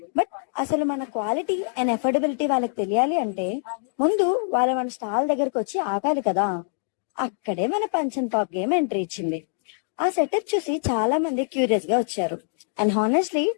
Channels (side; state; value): right; silent; digital silence